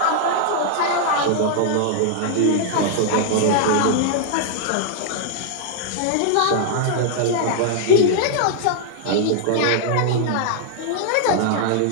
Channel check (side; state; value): both; different; correlation -0.01